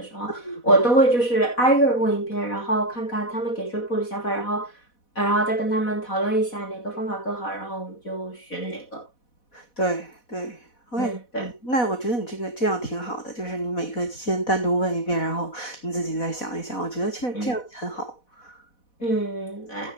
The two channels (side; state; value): right; late; 4.1 ms